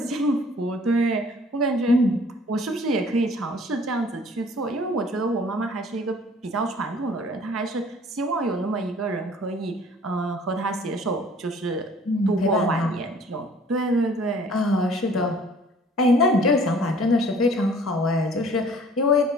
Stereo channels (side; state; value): both; normal; correlation 0.53